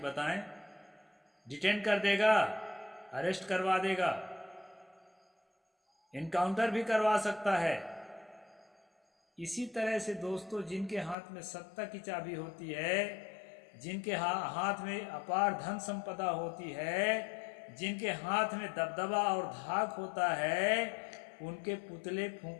बताएं, डिटेन कर देगा, अरेस्ट करवा देगा, इनकाउंटर भी करवा सकता है। इसी तरह से दोस्तों, जिनके हाथ में सत्ता की चाबी होती है, जिनके हाथ में अपार धन संपदा होती है, जिनके हाथ में दबदबा और धाक होता है, उनके पुतले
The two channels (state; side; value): drops out; right; at 11.2 s